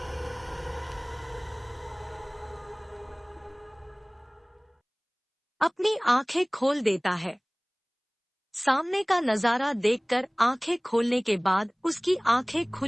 अपनी आंखें खोल देता है। सामने का नजारा देखकर आंखें खोलने के बाद उसकी आंखें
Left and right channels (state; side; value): identical; both; correlation 1.00